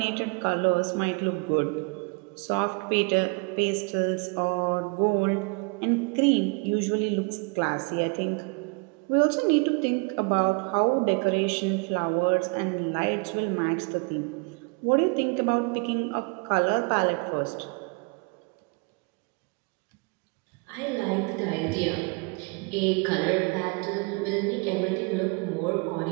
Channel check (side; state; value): left; quieter; 32.2 dB